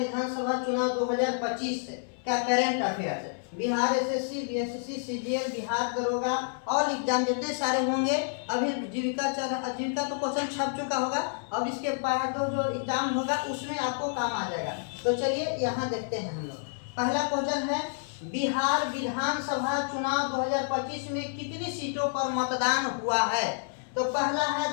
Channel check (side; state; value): right; silent; 56 dB below the other